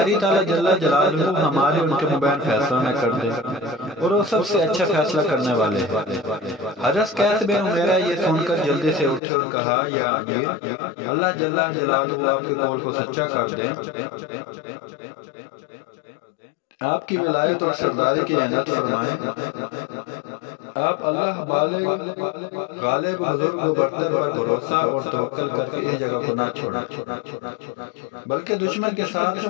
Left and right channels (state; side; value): drops out; right; at 9.2 s